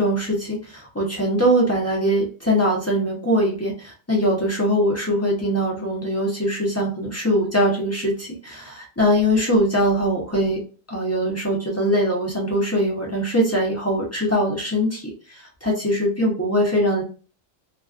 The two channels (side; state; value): both; normal; correlation 0.04